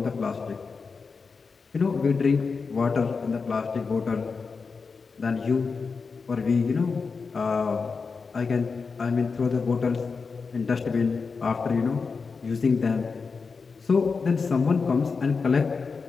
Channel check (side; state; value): right; quieter; 4.9 dB